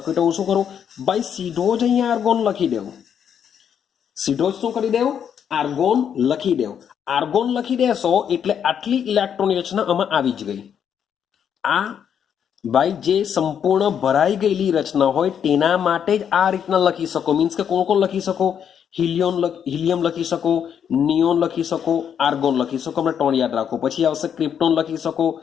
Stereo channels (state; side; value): quieter; right; 8.3 dB